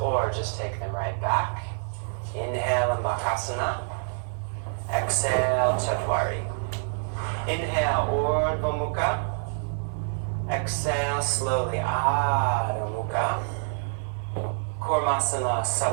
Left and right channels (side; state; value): left; silent; digital silence